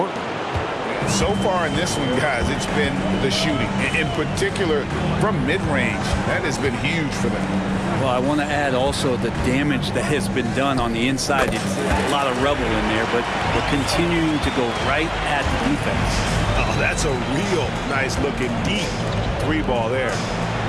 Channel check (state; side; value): identical; both; correlation 1.00